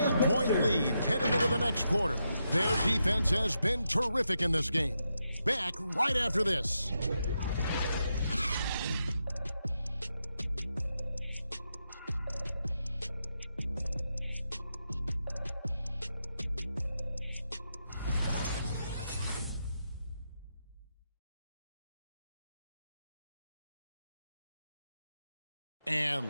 lead heading into the next quarter. Their defense has been terrific in this game. Back right after this. And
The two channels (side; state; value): both; inverted; correlation -0.85